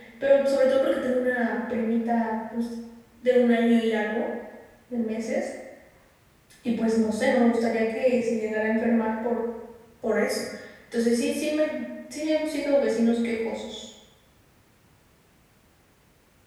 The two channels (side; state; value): both; identical; correlation 1.00